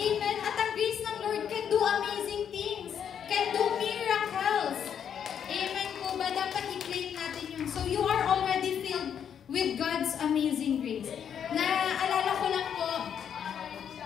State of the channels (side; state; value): right; quieter; 8.4 dB